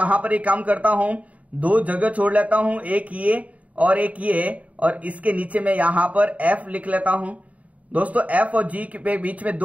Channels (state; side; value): late; left; 0.069 ms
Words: पर एक काम करता हूं, 2 जगह छोड़ लेता हूं, एक ये और एक ये, और इसके नीचे में यहां पर एफ लिख लेता हूं। दोस्तों एफ और जी के बीच में